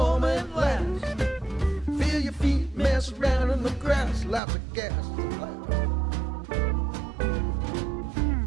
last. Feel your feet mess around in the grass. Lots of gas to blast.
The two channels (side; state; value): left; drops out; at 4.4 s